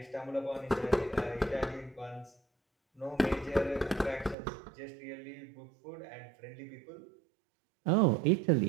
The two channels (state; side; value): drops out; left; at 4.4 s